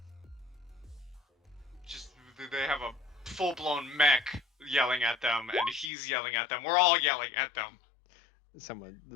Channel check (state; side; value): drops out; right; at 5.9 s